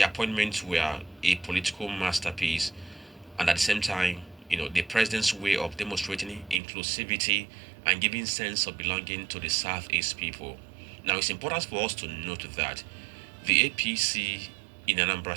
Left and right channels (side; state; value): left; drops out; at 6.6 s